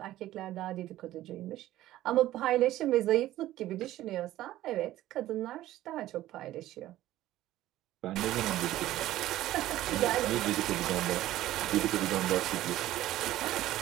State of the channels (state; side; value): quieter; left; 14.7 dB